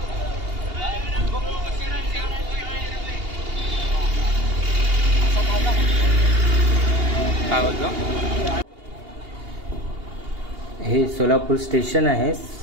काय बोलतो? हे सोलापूर स्टेशन आहे।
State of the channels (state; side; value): late; left; 2.8 ms